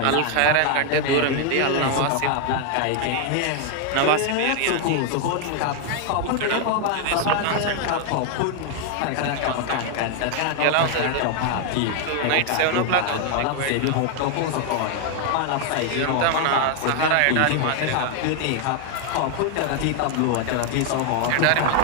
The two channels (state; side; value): different; both; correlation 0.00